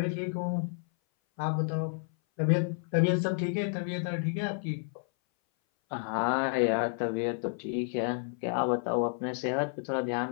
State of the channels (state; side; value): silent; right; 57 dB below the other